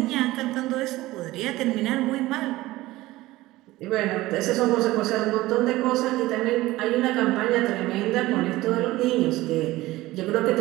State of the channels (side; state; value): left; quieter; 17.9 dB